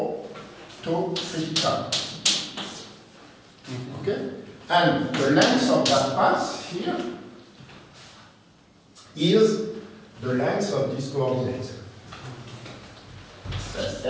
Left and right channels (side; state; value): both; identical; correlation 1.00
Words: tau theta. Okay. And the length of that path here is the length of this coordinate. That's